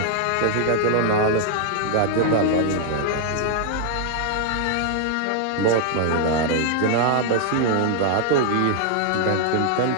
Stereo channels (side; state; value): both; different; correlation 0.00